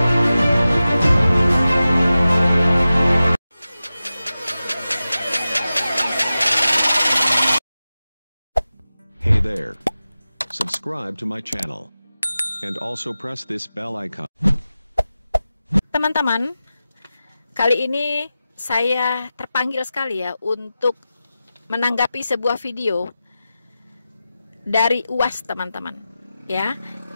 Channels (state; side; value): inverted; both; correlation -0.94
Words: Hey there. Subscribe to my channel. And also press this bell icon. Teman-teman, kali ini saya terpanggil sekali ya untuk menanggapi sebuah video dari UAS, teman-teman. Ya.